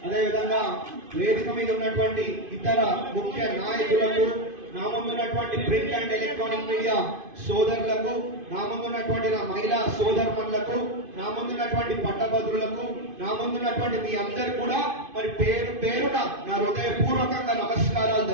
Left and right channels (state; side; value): late; left; 2.5 ms